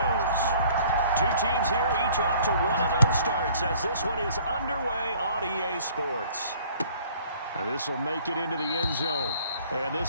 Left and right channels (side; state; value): both; inverted; correlation -0.55